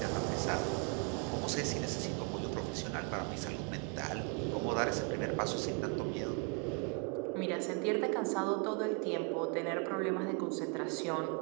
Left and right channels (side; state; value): left; quieter; 31.5 dB